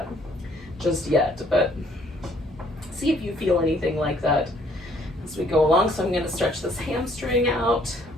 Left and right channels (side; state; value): both; normal; correlation 0.63